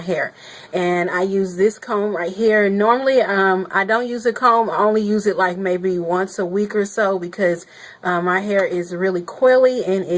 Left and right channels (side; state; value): both; identical; correlation 1.00